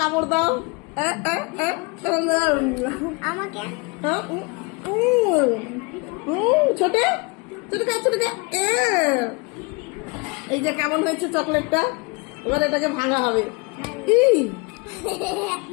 কামড় দাও। আমাকে ছোটে ছোটে এই যে কেমন হয়েছে চকলেটটা? এবার এটাকে ভাঙা হবে।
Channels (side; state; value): right; quieter; 29.3 dB